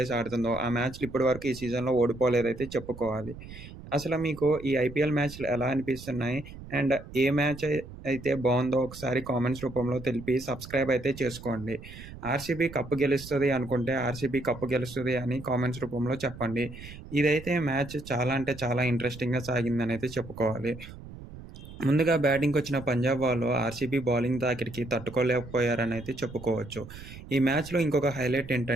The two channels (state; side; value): noise; right; rumble, 15 dB below the sound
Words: ఆడుతుందో ఆ మ్యాచ్‌లు ఇప్పటి వరకు ఈ సీజన్‌లో ఓడిపోలేదైతే చెప్పుకోవాలి. అసలు మీకు ఈ ఐపీఎల్ మ్యాచ్‌లు ఎలా అనిపిస్తున్నాయి? అండ్ ఏ మ్యాచ్ అయితే బావుందో ఒకసారి కామెంట్స్ రూపంలో తెలిపి సబ్స్క్రైబ్ అయితే చేసుకోండి. ఆర్‌సీబీ కప్ గెలుస్తది అనుకుంటే ఆర్‌సీబీ కప్ గెలుస్తది అని కామెంట్స్ రూపంలో చెప్పండి. ఇదైతే మ్యాచ్ చాలా అంటే చాలా ఇంట్రెస్టింగ్‌గా సాగిందనైతే చెప్పుకోవాలి. ముందుగా బ్యాటింగ్‌కొచ్చిన పంజాబ్ వాళ్ళు ఆర్‌సీబీ బౌలింగ్ తాకిడికి తట్టుకోలేకపోయారనైతే చెప్పుకోవచ్చు. ఈ మ్యాచ్‌లో ఇంకొక హైలైట్